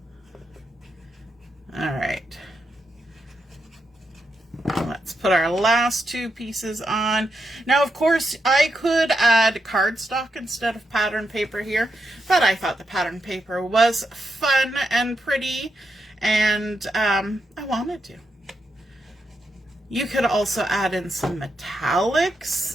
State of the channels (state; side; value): normal; both; correlation 0.84